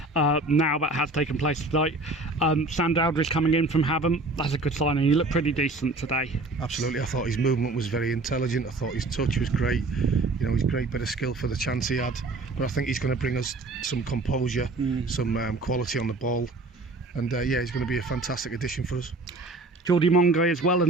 now. That has taken place tonight. Sam Dowdridge coming in from Havant, that's a good signing. He looked pretty decent today. Absolutely. I thought his movement was very intelligent. I thought his touch was great. He's great bit of skill for the chance he had. But I think he's going to bring us some composure, some quality on the ball. And he's going to be a fantastic addition for us. Geordie Mongai as well,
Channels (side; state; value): left; quieter; 3.1 dB